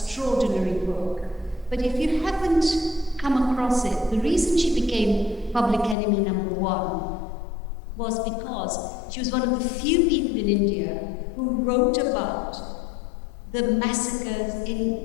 book. But if you haven't come across it, the reason she became public enemy number one was because she was one of the few people in India who wrote about the massacres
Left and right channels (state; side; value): drops out; right; at 6.0 s